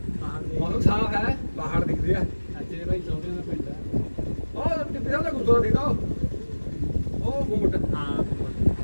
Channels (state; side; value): inverted; both; correlation -1.00